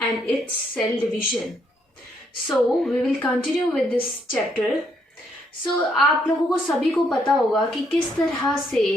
and its cell division. So we will continue with this chapter. आप लोगों को सभी को पता होगा कि किस तरह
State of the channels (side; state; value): both; normal; correlation 0.73